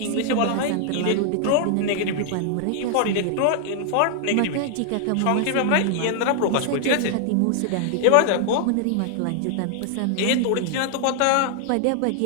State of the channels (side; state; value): both; different; correlation 0.00